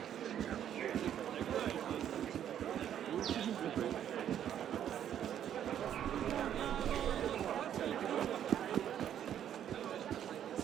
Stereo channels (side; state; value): left; quieter; 10.0 dB